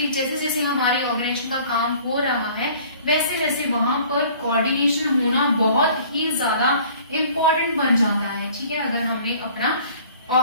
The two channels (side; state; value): both; inverted; correlation -0.51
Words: जैसे जैसे हमारे ऑर्गेनाइजेशन का काम हो रहा है वैसे वैसे वहां पर कोऑर्डिनेशन होना बहुत ही ज्यादा इम्पोर्टेंट बन जाता है। ठीक है, अगर हमने अपना